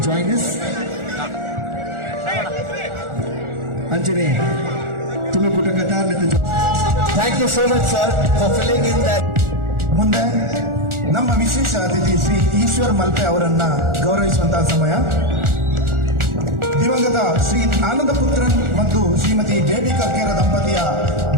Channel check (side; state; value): left; late; 1.4 ms